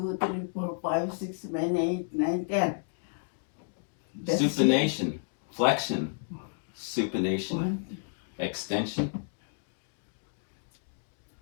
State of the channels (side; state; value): right; silent; digital silence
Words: 3, 4, 5, 6, 7, 8, 9, 10. That's Supination, flexion, supination, 1, extension,